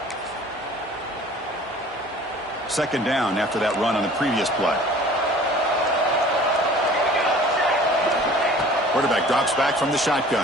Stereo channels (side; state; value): both; normal; correlation 0.47